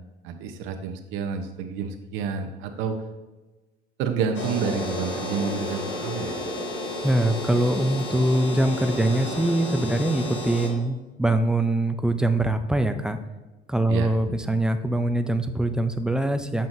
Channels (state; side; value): normal; both; correlation 0.76